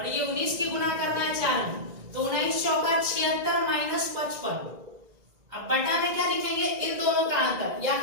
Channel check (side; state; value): left; late; 2.0 ms